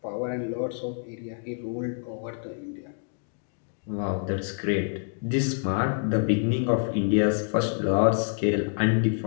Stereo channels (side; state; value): right; silent; digital silence